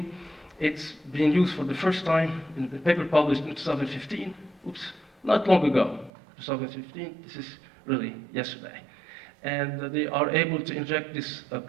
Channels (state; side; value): drops out; left; at 6.1 s